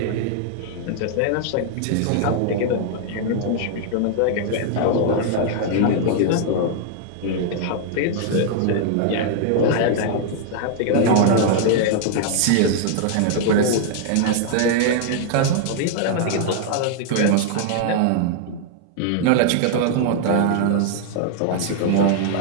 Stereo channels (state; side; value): different; both; correlation 0.00